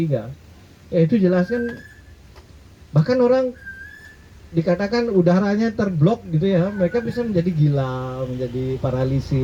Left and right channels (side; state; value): both; identical; correlation 1.00